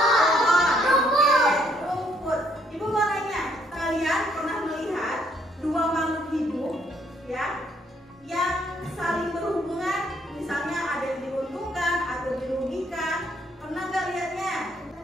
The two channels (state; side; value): normal; both; correlation 0.68